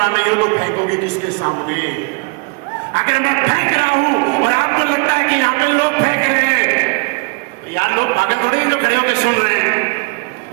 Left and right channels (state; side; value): quieter; left; 29.8 dB